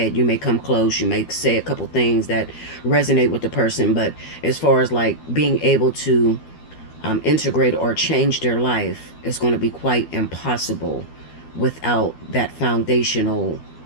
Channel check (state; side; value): late; right; 12 ms